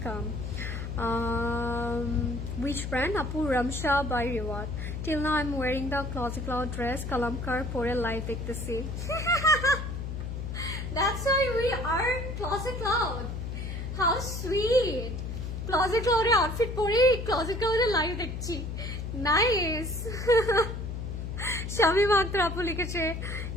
Which brand? Apu Ramsha by Reward. Till now I'm wearing the Classy Cloud dress. Kalamkar pore live dekhte. That's why we are Classy Cloud. How sweet. Classy Cloud e outfit pore Classy Cloud e live dekhchi. Nice. Shami Matra Apu likheche,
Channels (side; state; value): left; noise; hum, 5 dB below the sound